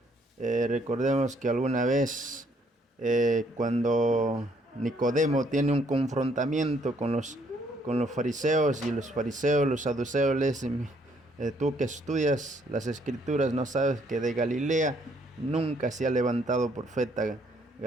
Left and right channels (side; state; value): both; normal; correlation 0.67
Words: recordemos que alguna vez cuando Nicodemo tiene un confrontamiento con los fariseos, y los fariseos, los saduceos le dicen: tú que estudias las escrituras, no sabes que de Galilea nunca se ha levantado profeta.